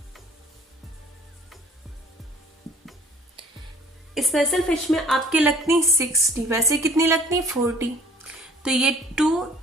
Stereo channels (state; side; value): normal; both; correlation 0.53